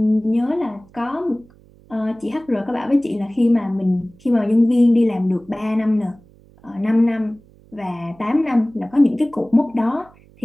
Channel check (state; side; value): noise; right; hum, 27 dB below the sound